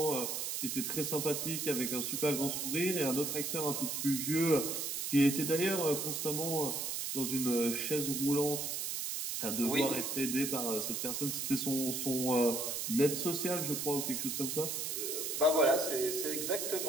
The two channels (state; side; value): noise; right; hiss, 2 dB below the sound